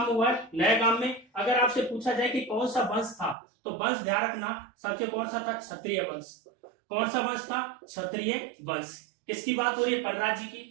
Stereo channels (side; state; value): left; drops out; at 3.4 s